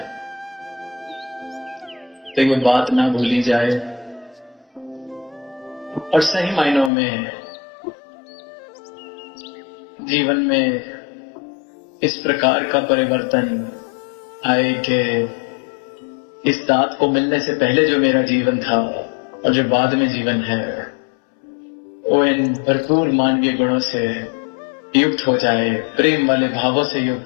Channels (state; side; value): drops out; right; at 6.9 s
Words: तो ये बात ना भूली जाए, और सही मायनों में जीवन में इस प्रकार का परिवर्तन आए कि इस दात को मिलने से पहले जो मेरा जीवन था और जो बाद में जीवन है, वो इन भरपूर मानवीय गुणों से युक्त हो जाए, प्रेम वाले भावों से